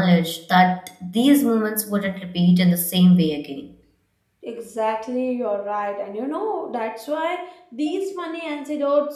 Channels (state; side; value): identical; both; correlation 1.00